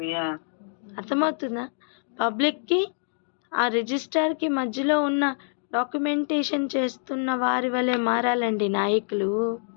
అర్థమవుతుందా? పబ్లిక్కి ఆ రిజిస్ట్రార్కి మధ్యలో ఉన్న డాక్యుమెంటేషన్ చేస్తున్న వారి వలె మారాలండి నాయకులు.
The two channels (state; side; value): silent; right; digital silence